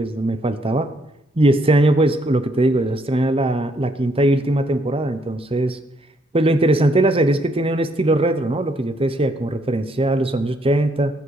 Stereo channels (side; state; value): both; normal; correlation 0.71